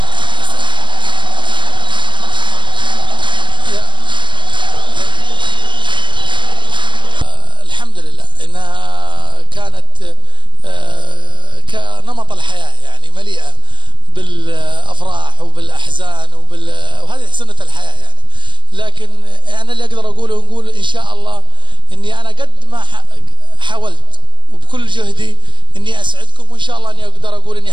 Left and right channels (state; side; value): late; left; 0.23 ms